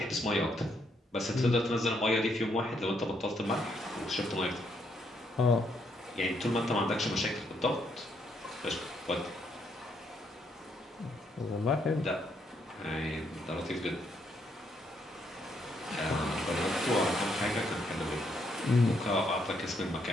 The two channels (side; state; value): both; normal; correlation 0.74